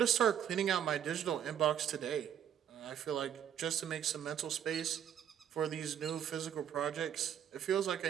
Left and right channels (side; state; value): left; quieter; 9.4 dB